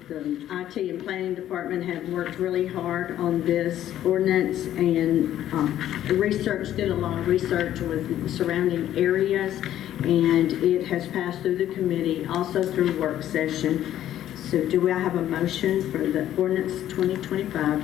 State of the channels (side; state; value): right; quieter; 12.0 dB